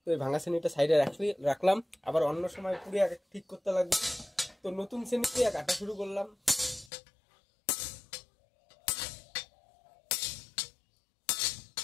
তো এই ভাঙা শ্রেণীটা সাইডে রাখলাম, আবার অন্য সময় পুড়ে ঠিক করতে লাগবে। তো নতুন শ্রেণী দিয়ে কাটা শুরু করলাম।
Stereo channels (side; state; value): right; drops out; at 6.9 s